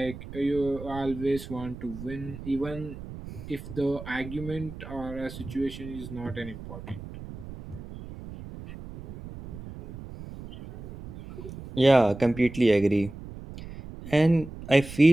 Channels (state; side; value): noise; right; rumble, 13 dB below the sound